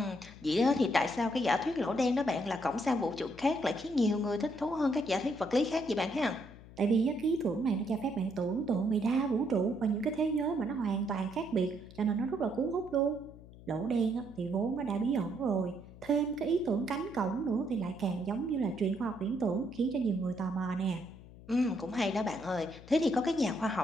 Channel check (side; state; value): left; noise; hum, 19 dB below the sound